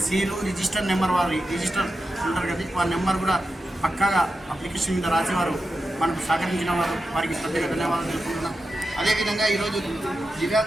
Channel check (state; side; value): normal; both; correlation 0.90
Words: సీలు రిజిస్టర్ నెంబర్ వారి రిజిస్టర్ ఉంటారు కదా, వారి నెంబర్ కూడా పక్కాగా అప్లికేషన్ మీద రాసేవారు మనకు సహకరించిన వారికి ప్రత్యేక ధన్యవాదాలు తెలుపుకుంటున్నాం. అదేవిధంగా ఈరోజు